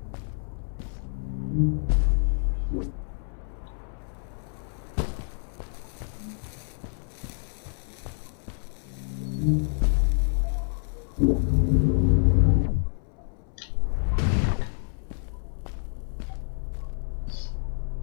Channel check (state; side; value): silent; right; 59 dB below the other